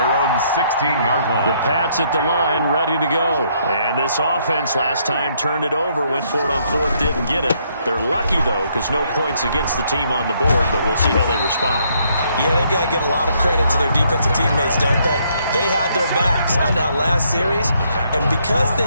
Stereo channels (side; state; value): both; inverted; correlation -0.71